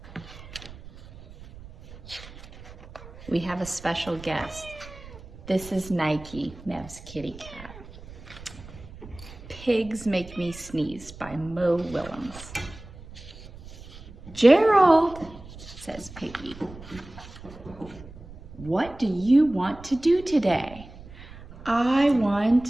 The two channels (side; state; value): right; noise; rumble, 17 dB below the sound